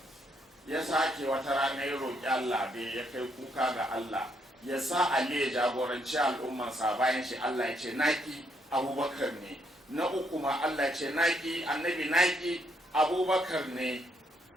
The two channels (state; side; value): normal; both; correlation 0.73